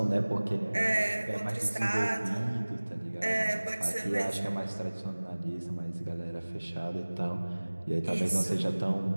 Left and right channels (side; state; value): both; inverted; correlation -1.00